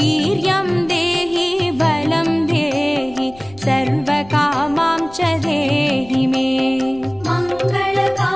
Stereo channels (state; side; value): noise; left; rumble, 23 dB below the sound